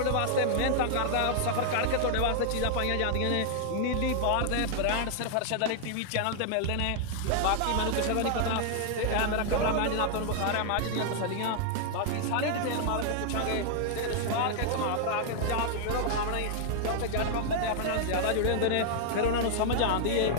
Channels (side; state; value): both; different; correlation 0.00